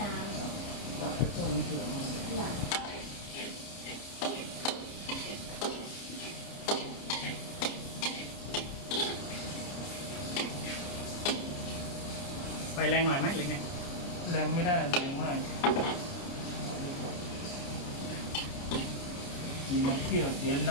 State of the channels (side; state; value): right; late; 29 ms